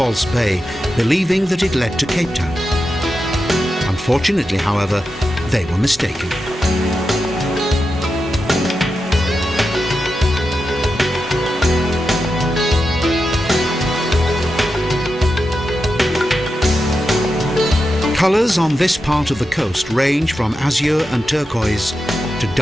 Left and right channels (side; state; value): both; normal; correlation 0.89